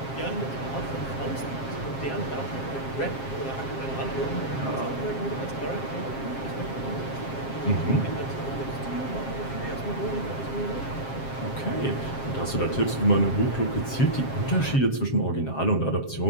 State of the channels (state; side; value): late; right; 7.5 ms